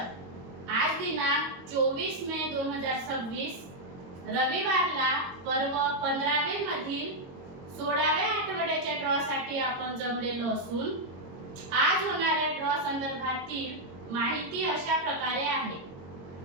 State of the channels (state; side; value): late; left; 22 ms